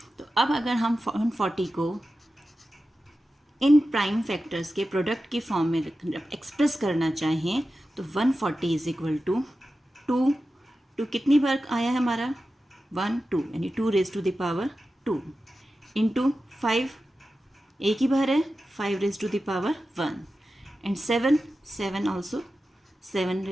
तो अब अगर हम 140 को इन प्राइम फैक्टर्स के प्रोडक्ट के फॉर्म में एक्सप्रेस करना चाहें तो 140 इज इक्वल टू 2 कितनी बार आया है हमारा, 1 2, यानी 2 raise to the power 2 into 5 एक ही बार है, 5 raise to the power 1 and 7 also 7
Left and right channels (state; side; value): normal; both; correlation 0.93